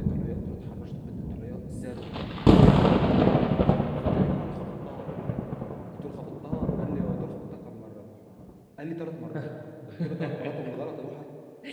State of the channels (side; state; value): both; identical; correlation 1.00